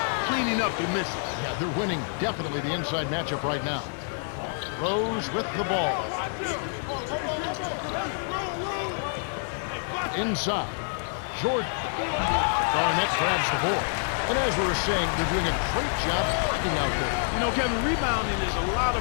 cleaning up the misses. Yeah, they're winning definitely the inside matchup right now. Rose with the ball. Inside. Jordan. Garnett grabs the board. And as we were saying, they're doing a great job blocking out there. You know, Kevin, rebounding is a lot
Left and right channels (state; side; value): silent; right; 60 dB below the other